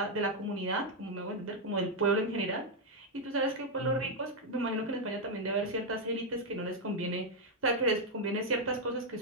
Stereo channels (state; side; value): normal; both; correlation 0.00